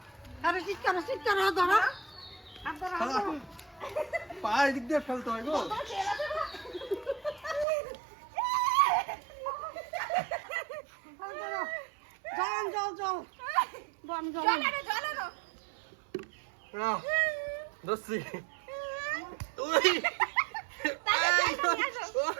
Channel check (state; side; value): drops out; left; at 7.7 s